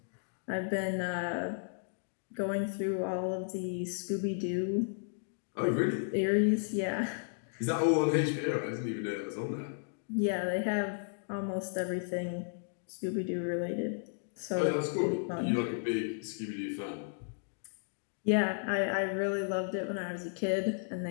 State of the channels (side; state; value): right; silent; digital silence